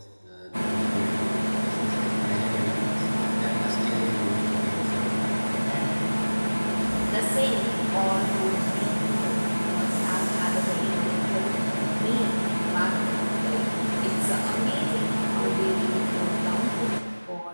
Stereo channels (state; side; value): inverted; both; correlation -1.00